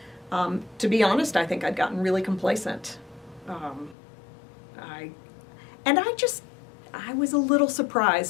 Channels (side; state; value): right; drops out; at 4.0 s